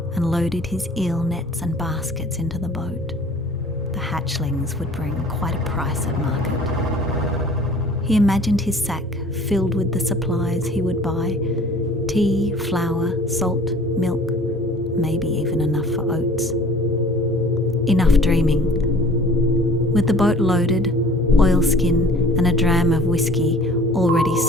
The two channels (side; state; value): both; normal; correlation 0.48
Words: and loaded his eel nets and baskets into the boat. The hatchlings would bring quite a price at market. He imagined his sack filled with the supplies he would buy: tea, flour, salt, milk, maybe even enough for oats. Enough dreaming. With the boat loaded, oilskin and a dram of whiskey already